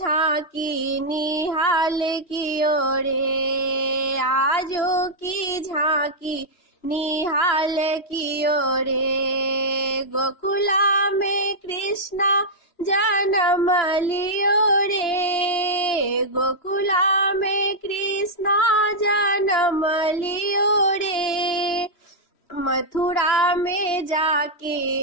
निहाल की ओरे, आजो की झांकी निहाल की ओरे, गोकुला में कृष्णा जन्म लियो रे, गोकुला में कृष्णा जन्म लियो रे, मथुरा में जाके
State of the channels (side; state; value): right; late; 2.9 ms